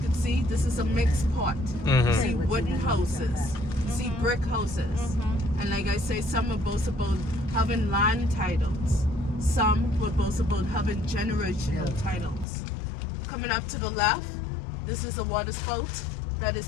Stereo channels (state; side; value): drops out; right; at 12.5 s